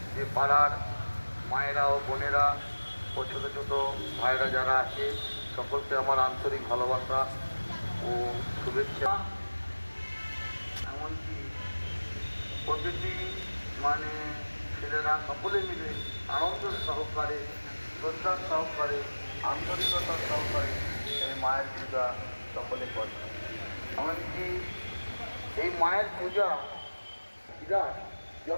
যে পাড়ার মায়েরা ও বোনেরা ও ছোটো ছোটো ভাইরা যারা আছে, সকলকে আমার আন্তরিক ভালোবাসা ও শুভেচ্ছা। এমনকি প্রতিটি ছেলেরা সকলে মিলে আনন্দ সহকারে, শ্রদ্ধার সহকারে, আন্তরিকতার সহকারে এই মায়ের পূজা সকলে করে। এমনকি এই মায়ের পূজা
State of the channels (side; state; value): both; inverted; correlation -1.00